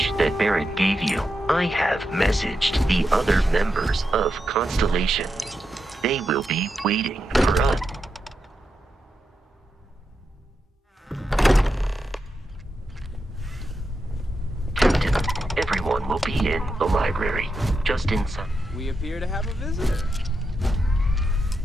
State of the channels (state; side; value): normal; both; correlation 0.86